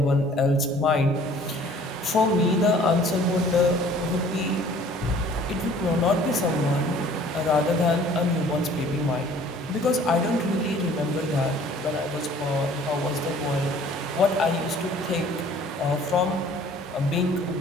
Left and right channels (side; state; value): both; normal; correlation 0.53